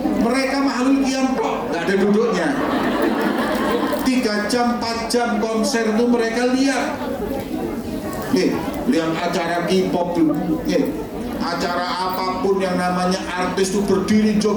Mereka Mahlul Qiyam kok nggak ada duduknya. 3 jam, 4 jam konser itu mereka lihat. Nih, lihat acara K-pop nih, acara apapun yang namanya artis itu berdiri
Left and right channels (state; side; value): identical; both; correlation 1.00